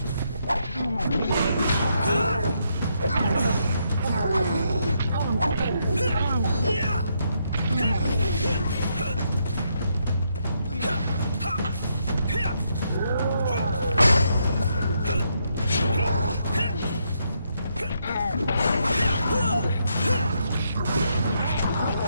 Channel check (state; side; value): inverted; both; correlation -0.77